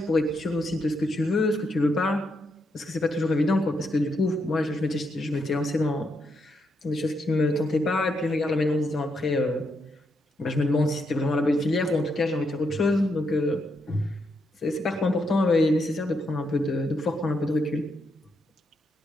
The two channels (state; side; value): normal; both; correlation 0.80